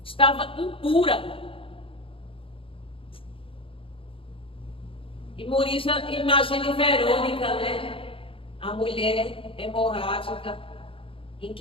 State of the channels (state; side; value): late; right; 0.26 ms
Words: estava impura. E imagine Verônica, né? A mulher hemorrágica, em